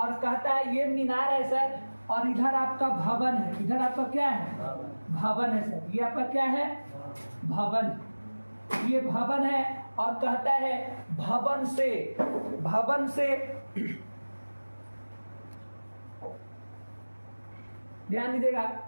कहता है ये मीनार है सर, और इधर आपका भवन है, इधर आपका क्या है, भवन है सर। ये आपका क्या है, भवन, ये भवन है। और कहता है भवन से ध्यान दीजिएगा,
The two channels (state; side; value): inverted; both; correlation -1.00